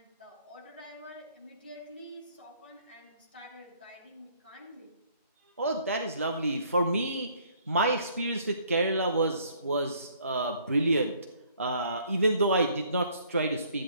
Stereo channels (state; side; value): inverted; both; correlation -0.62